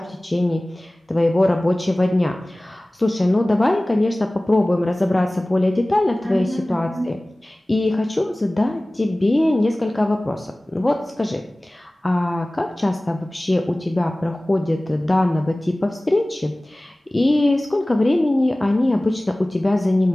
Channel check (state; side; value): normal; both; correlation 0.98